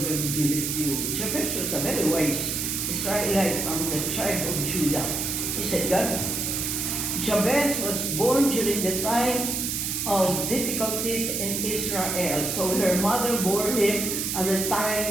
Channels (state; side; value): noise; right; hiss, 1 dB below the sound